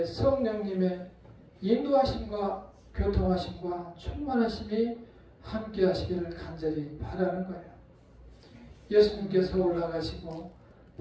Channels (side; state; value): both; identical; correlation 1.00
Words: 성령님의 인도하심과 교통하심과 충만하심이 함께 하시기를 간절히 바라는 거예요. 예수님께서 올라가시고